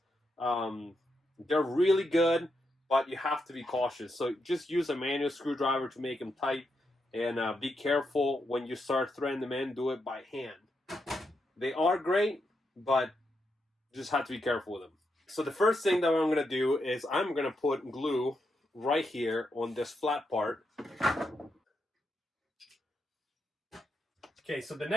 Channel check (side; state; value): both; normal; correlation 0.83